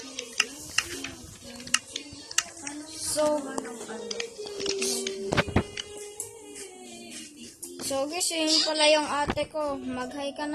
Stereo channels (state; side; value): identical; both; correlation 1.00